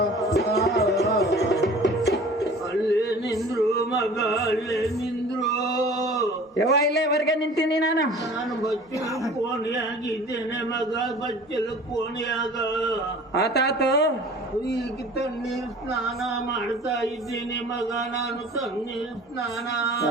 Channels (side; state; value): both; normal; correlation 0.45